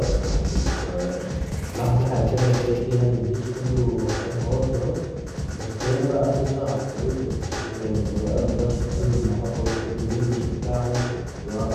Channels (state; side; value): identical; both; correlation 1.00